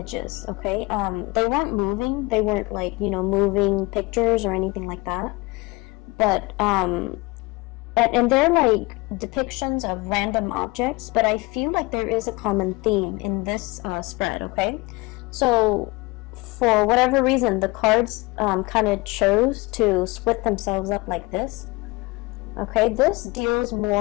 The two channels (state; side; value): quieter; right; 24.3 dB